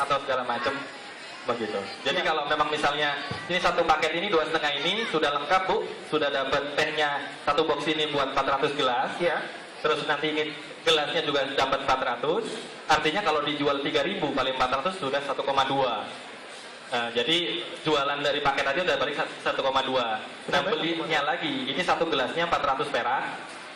segala macam. begitu. Jadi Ya. kalau memang misalnya ini satu paket ini 2,5 ini sudah lengkap Bu, sudah dapat tehnya satu box ini buat 400 gelas. Ya. Terus nanti ini gelasnya juga dapat 400. Artinya kalau dijual 3.000 kali 400 sudah 1,2. Jadi jualan dari paket aja udah balik 1,2. Nah belinya lagi, ini satu gelasnya 400 perak,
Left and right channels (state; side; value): identical; both; correlation 1.00